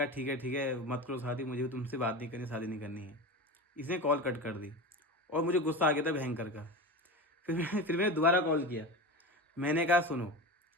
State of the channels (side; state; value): both; normal; correlation 0.26